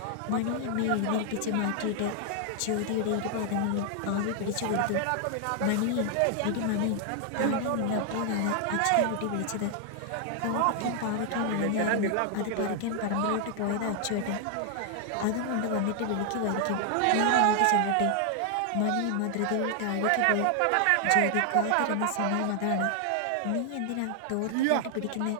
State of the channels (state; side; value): different; both; correlation 0.00